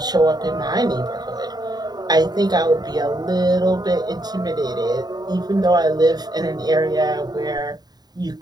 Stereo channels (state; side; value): late; left; 0.20 ms